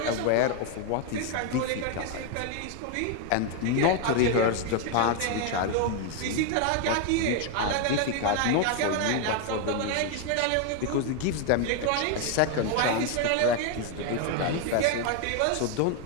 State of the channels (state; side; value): different; both; correlation 0.01